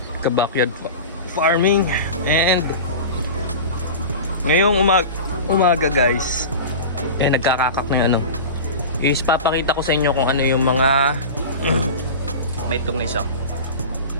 ka-backyard farming. And ngayong umaga guys, nagkakakak na yung ano, is papakita ko sa inyo kung ano yung mga may itong isa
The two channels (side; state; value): both; inverted; correlation -0.31